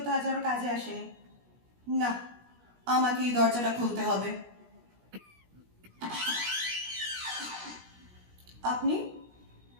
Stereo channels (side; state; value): left; late; 17 ms